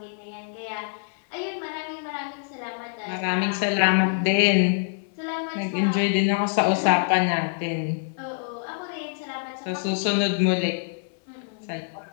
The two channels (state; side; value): silent; right; 58 dB below the other